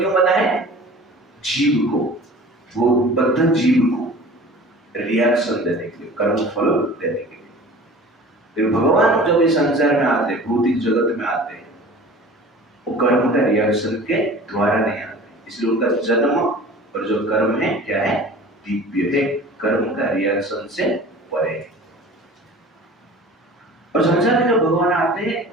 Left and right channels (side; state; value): both; normal; correlation 0.42